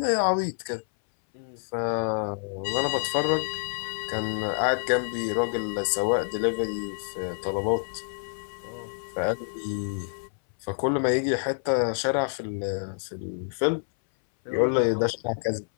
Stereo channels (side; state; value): right; silent; 58 dB below the other